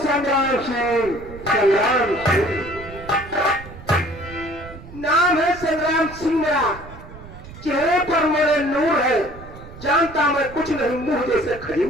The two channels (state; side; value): noise; right; rumble, 16 dB below the sound